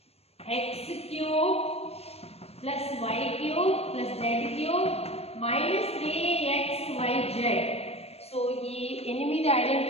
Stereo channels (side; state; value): right; late; 0.29 ms